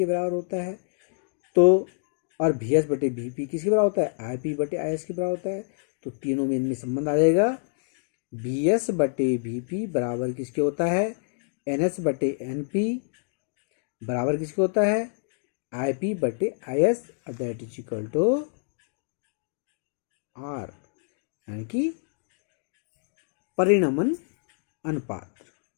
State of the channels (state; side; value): silent; right; digital silence